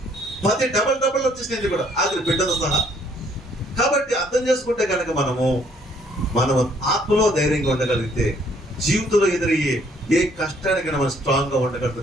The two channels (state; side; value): normal; both; correlation 0.64